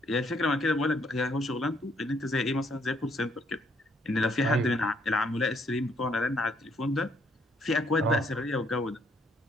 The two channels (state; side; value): normal; both; correlation 0.68